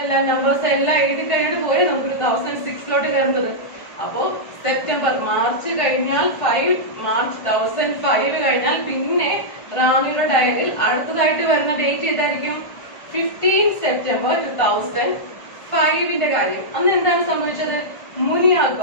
നമ്പേഴ്സ് എല്ലാം എഴുതി കഴിഞ്ഞിട്ട് പോയി നമുക്ക് 2006 കയറുന്നത്. അപ്പോ സെപ്റ്റംബർ മാർച്ച് കഴിഞ്ഞാൽ 5 മാർച്ച് 2005 കഴിഞ്ഞാൽ പിന്നെ റാമിയുടെ ഡയറിയിൽ അടുത്തതായിട്ട് വരുന്ന ഡേറ്റ് ഏതായിരിക്കും? 15 സെപ്റ്റംബർ 2005ന്റെ കാര്യം. അന്ന് എന്താണ് സംഭവിച്ചത്? മുനിയ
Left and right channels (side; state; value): right; late; 1.5 ms